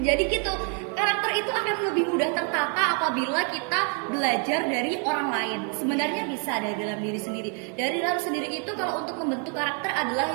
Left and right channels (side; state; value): left; quieter; 39.6 dB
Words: gitu, karakter itu akan lebih mudah tertata apabila kita belajar dari orang lain. Sebenarnya bisa dari dalam diri sendiri. Dari dalam sendiri itu kalau untuk membentuk karakter